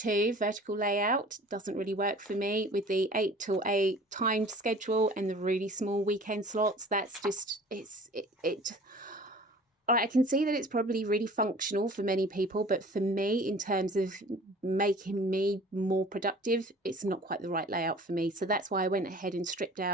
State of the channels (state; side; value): normal; both; correlation 0.47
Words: vertical layout doesn't really work for me with the 8 till 8 timed schedule and the really small weekend slots. That's just, I can see that it's probably really functional for many people, but for me, in terms of making me more productive, it's not quite the right layout for me. So that's why I went ahead and stripped